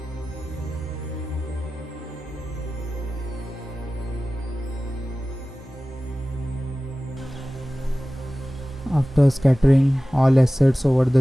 After scattering all assets over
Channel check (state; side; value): normal; both; correlation 0.96